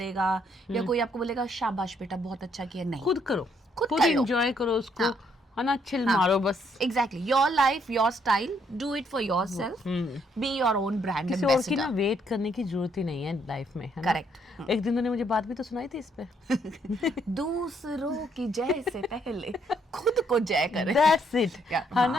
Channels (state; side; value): normal; both; correlation 0.71